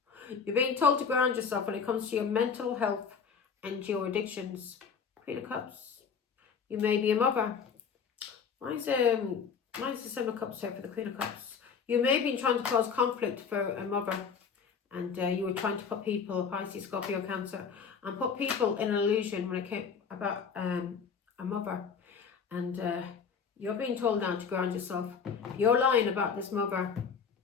You're being told to ground yourself when it comes to your mental health and your addictions. Queen of Cups. You may be a mother. Why is the Seven of Cups here for the Queen of Cups? You may be trying to cause conflict for a mother. And you were trying to put people, Pisces, Scorpio, Cancer, and put people in an illusion when it came about a mother. And you're being told now to ground yourself. You're lying about this mother,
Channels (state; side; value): quieter; right; 6.2 dB